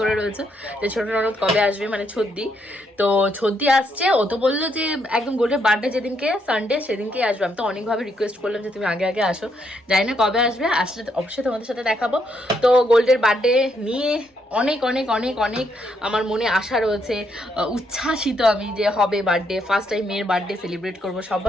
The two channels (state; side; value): normal; both; correlation 0.75